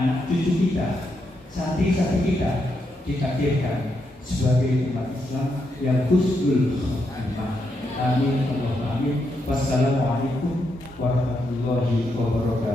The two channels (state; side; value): normal; both; correlation 0.81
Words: cucu kita, santri-santri kita ditakdirkan sebagai umat Islam yang husnul khotimah. Amin. Allahumma amin. Wassalamualaikum warahmatullahi